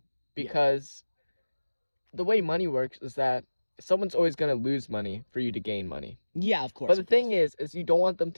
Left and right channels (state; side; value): inverted; both; correlation -1.00